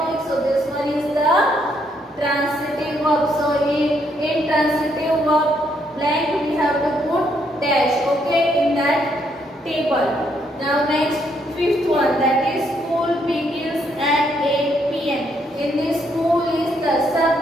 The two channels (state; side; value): normal; both; correlation 0.73